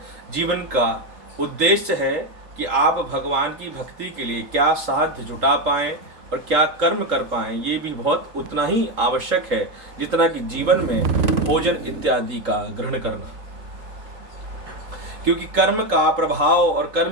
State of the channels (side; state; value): left; late; 3.8 ms